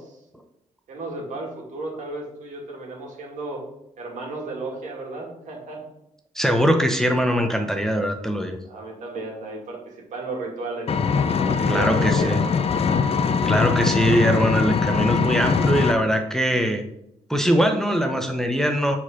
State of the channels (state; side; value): normal; both; correlation 0.72